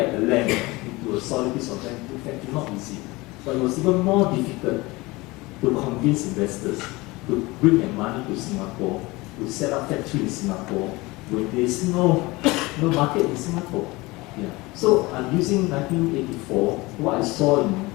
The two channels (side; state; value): right; quieter; 22.3 dB